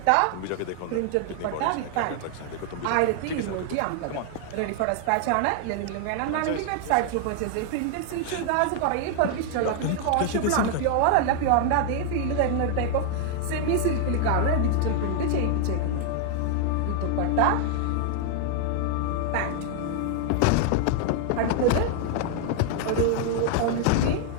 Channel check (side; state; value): both; different; correlation 0.00